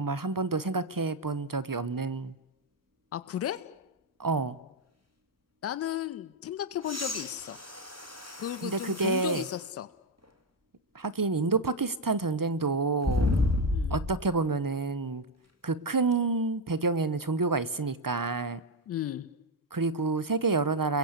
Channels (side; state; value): both; normal; correlation 0.04